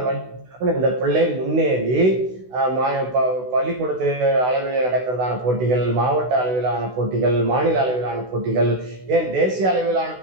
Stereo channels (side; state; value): left; late; 16 ms